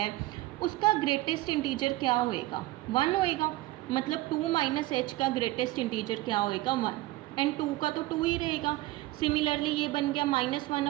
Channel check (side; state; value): left; quieter; 18.3 dB